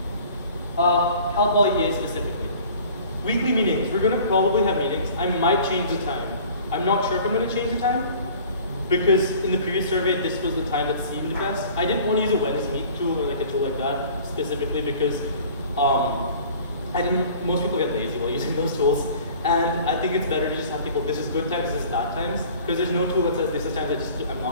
Cal Poly EA specifically. Weekly meetings. We're going to probably have meetings. I might change the time. I'm not sure if I'm going to change the time because in the previous survey, this was the time that seemed best. I didn't want to use a Wednesday Meet tool or like a tool like that specifically because most people get lazy while using those tools. And I think it's better to just have people, this is good times, this is bad times, because there's no tool that says this is times I'm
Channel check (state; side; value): inverted; both; correlation -0.47